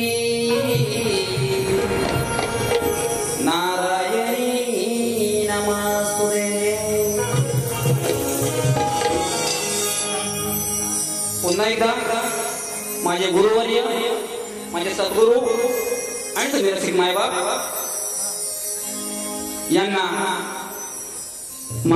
नारायणी नमस्तुते. पुन्हा एकदा माझे गुरुवर्य माझे सद्गुरू आणि सगळे रसिक मायबाप यांना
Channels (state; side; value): identical; both; correlation 1.00